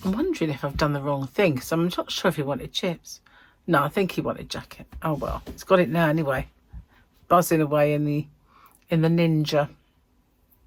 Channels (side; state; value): both; identical; correlation 1.00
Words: wondering if I've done the wrong thing, because I'm not sure if he wanted chips. No, I think he wanted jacket. Oh well, he's got it now anyway. Buzzing away in the Ninja.